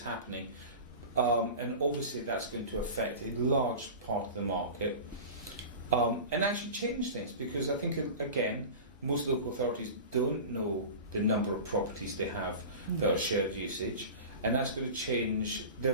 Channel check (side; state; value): both; inverted; correlation -0.32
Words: And obviously that's going to affect a large part of the market and actually change things because I think, again, most local authorities don't know the number of properties they have that are shared usage, and that's going to change their